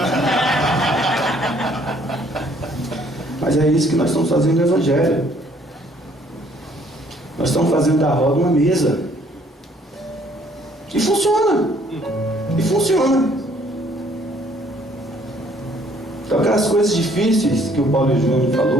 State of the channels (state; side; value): normal; both; correlation 0.62